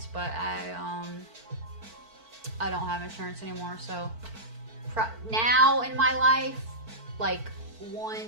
but I don't have insurance anymore. So now in my life, like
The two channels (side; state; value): left; late; 4.5 ms